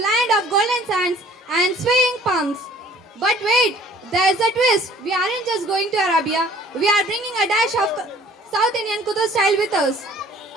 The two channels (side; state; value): both; normal; correlation 0.54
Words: of golden sands and swaying palms. But wait, there's a twist. We aren't just going to Arabia. We are bringing a dash of South Indian Kudu style with us.